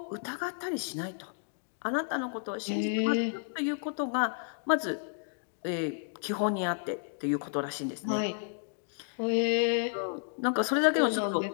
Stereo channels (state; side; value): silent; right; digital silence